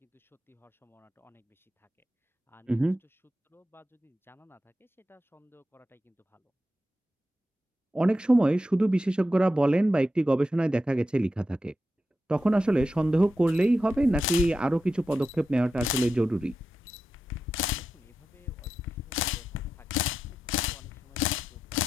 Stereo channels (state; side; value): normal; both; correlation 0.89